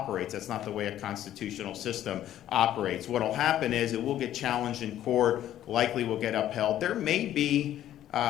That's not the way a constitutional system operates. What will happen is it will get challenged in court, likely will get upheld. There may be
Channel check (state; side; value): quieter; right; 12.1 dB